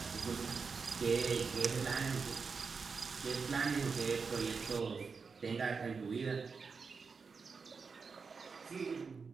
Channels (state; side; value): quieter; left; 5.1 dB